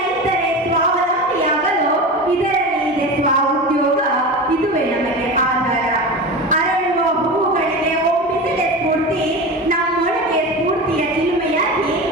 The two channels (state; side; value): normal; both; correlation 0.27